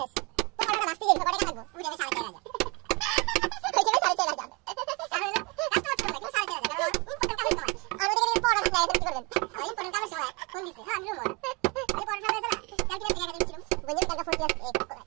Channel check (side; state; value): left; quieter; 28.6 dB